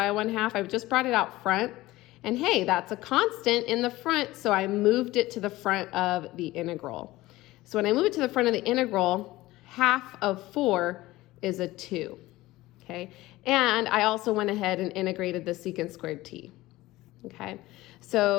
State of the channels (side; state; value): right; quieter; 18.1 dB